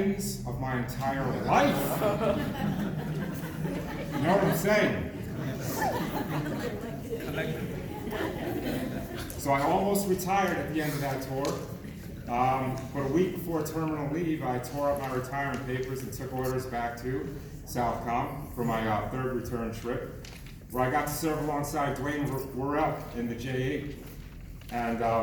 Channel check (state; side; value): identical; both; correlation 1.00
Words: of my entire life. You know what I'm saying? So I almost retired at the end of that tour. But a week before terminal leave, I tore up my retirement papers and took orders back to Southcom for my 3rd return trip, where I got to serve alongside Dwayne Worrell in the J8 and